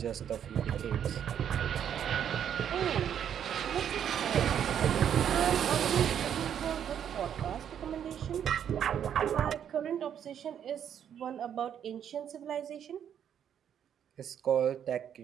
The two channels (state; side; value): quieter; left; 9.1 dB